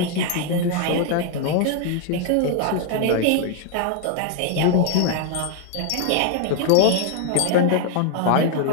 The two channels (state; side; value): different; both; correlation 0.00